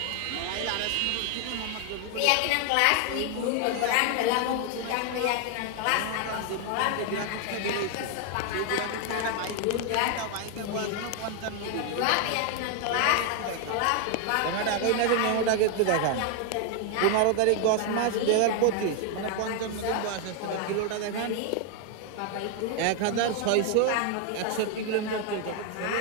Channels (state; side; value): different; both; correlation 0.01